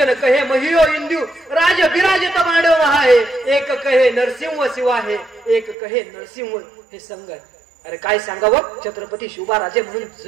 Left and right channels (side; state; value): left; drops out; at 5.8 s